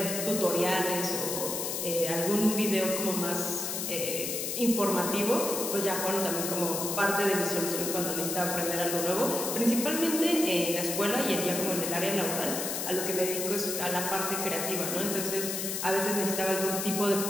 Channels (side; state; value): left; noise; hiss, 2 dB below the sound